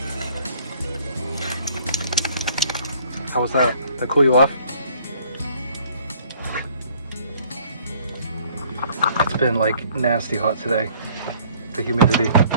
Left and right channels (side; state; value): both; inverted; correlation -0.57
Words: How was that? Did that cool you off? It's been like nasty hot today. The humidity.